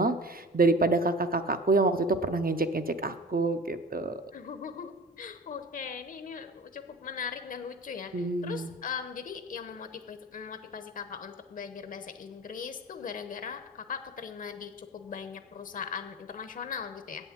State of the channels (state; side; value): normal; both; correlation 0.39